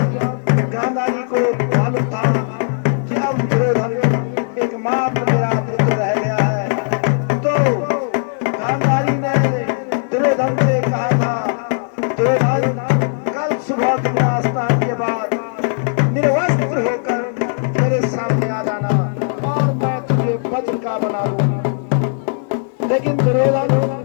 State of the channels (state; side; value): silent; right; 55 dB below the other